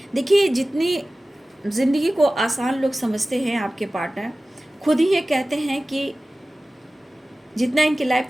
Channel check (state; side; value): normal; both; correlation 0.97